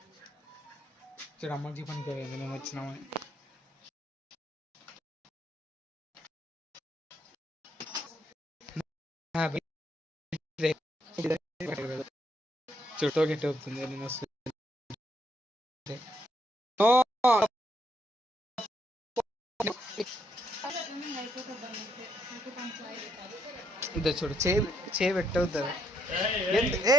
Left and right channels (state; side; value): normal; both; correlation 0.74